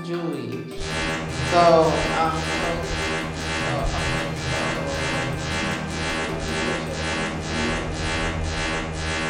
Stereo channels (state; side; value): identical; both; correlation 1.00